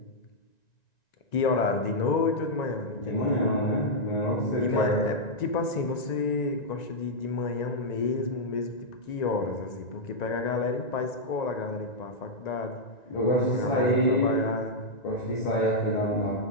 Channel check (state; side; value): late; right; 1.9 ms